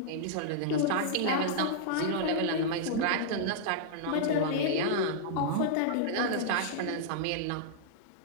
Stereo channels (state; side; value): different; both; correlation -0.02